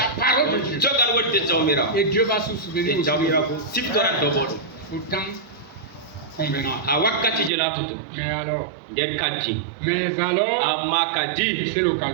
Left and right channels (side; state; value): left; drops out; at 7.5 s